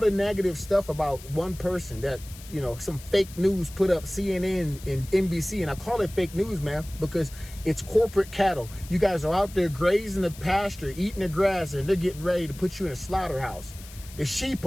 negative stuff about one person that, you know, some fake news put up, CNN and NBC. And I call it fake news, man, because it's corporate cattle. You guys are out there grazing the pasture, eating the grass, and they're getting ready to put you in a slaughterhouse. The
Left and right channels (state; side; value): noise; left; hiss, 18 dB below the sound